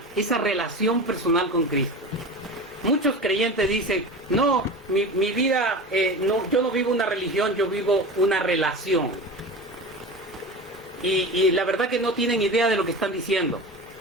esa relación personal con Cristo? Muchos creyentes dicen: no, mi vida, yo no vivo una religión, yo vivo una relación. Y la verdad que no tienen idea de lo que están diciendo.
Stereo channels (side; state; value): both; normal; correlation 0.30